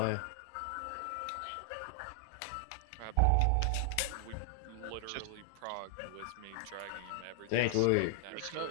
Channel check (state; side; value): different; both; correlation 0.00